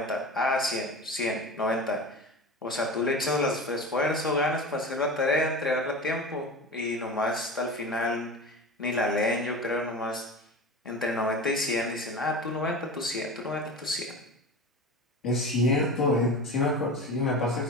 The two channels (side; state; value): both; normal; correlation 0.30